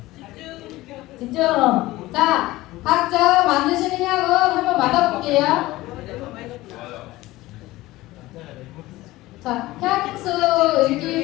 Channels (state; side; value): quieter; right; 18.1 dB